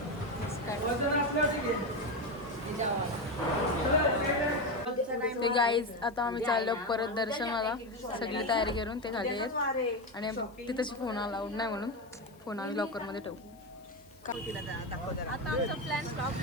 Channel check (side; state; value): left; noise; hiss, 29 dB below the sound